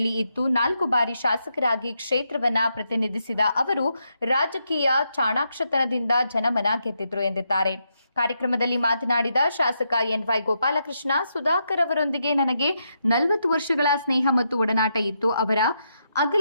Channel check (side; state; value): both; inverted; correlation -0.82